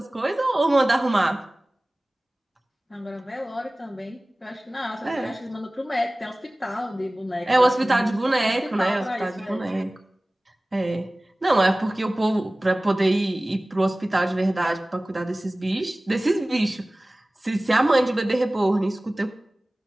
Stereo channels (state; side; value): normal; both; correlation 0.98